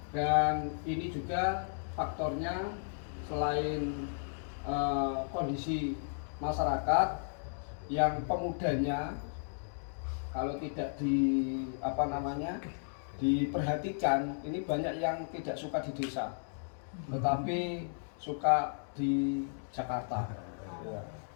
Dan ini juga faktornya selain kondisi masyarakat yang pemudanya kalau tidak diperhatikan, ini banyak yang tidak suka di desa, tetapi suka di Jakarta. Ya.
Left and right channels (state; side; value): silent; right; digital silence